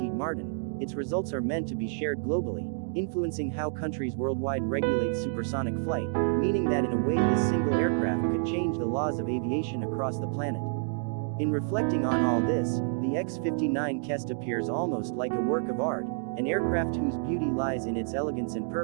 Martin, its results are meant to be shared globally, influencing how countries worldwide regulate supersonic flight, meaning that in a way this single aircraft could change the laws of aviation across the planet. In reflecting on all this, the X-59 Quesst appears almost like a work of art, an aircraft whose beauty lies in its elegance and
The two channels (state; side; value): silent; left; digital silence